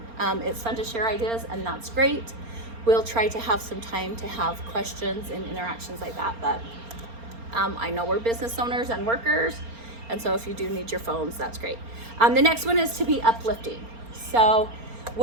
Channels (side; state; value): left; late; 4.3 ms